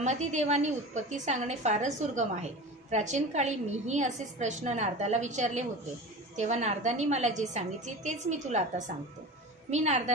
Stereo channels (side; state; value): both; normal; correlation 0.32